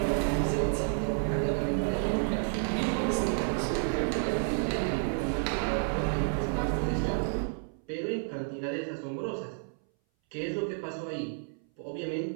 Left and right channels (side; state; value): left; silent; 57 dB below the other